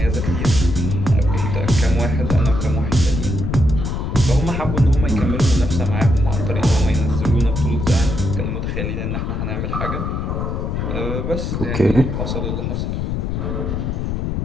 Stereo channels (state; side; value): noise; left; rumble, 2 dB below the sound